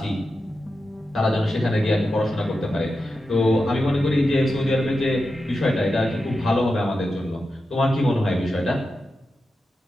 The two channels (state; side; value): normal; both; correlation 0.90